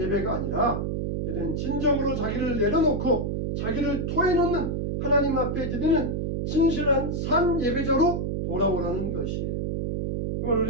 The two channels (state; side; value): noise; right; hum, 1 dB below the sound